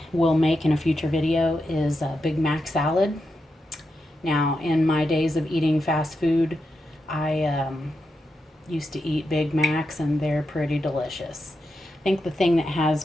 will make in a future video is a Big Mac salad. Now, in my days of eating fast food, I used to eat Big Macs, and they're pretty delicious. I think the thing that has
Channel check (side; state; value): both; normal; correlation 0.87